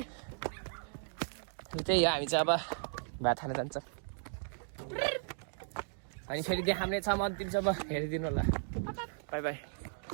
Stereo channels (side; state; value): left; silent; digital silence